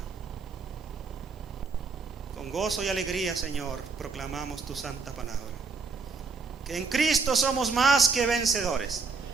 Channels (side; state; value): left; quieter; 4.6 dB